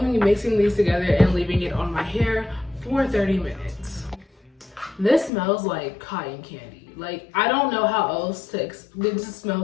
be mixing these together and leaving it on my hair for 30 minutes. This smells like cotton candy. Like, I don't know how else to explain. It just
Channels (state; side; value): drops out; right; at 5.3 s